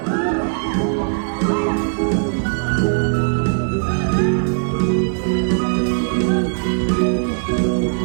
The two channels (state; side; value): silent; left; digital silence